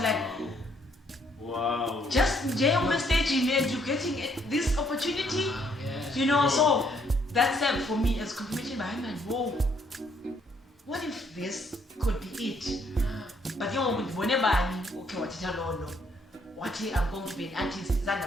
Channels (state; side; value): normal; both; correlation 0.68